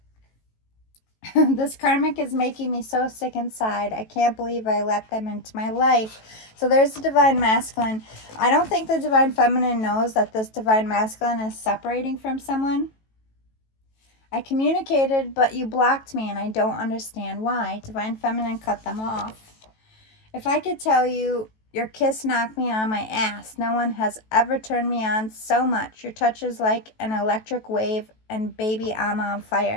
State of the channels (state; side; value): late; right; 18 ms